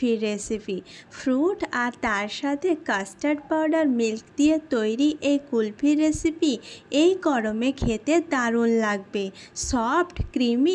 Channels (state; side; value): identical; both; correlation 1.00